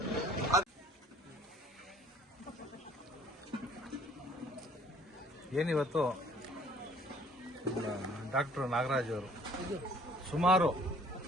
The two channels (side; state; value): both; normal; correlation 0.56